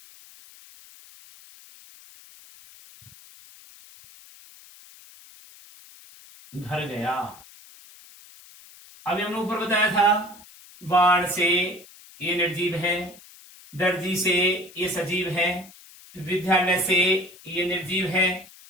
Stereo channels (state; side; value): noise; left; hiss, 22 dB below the sound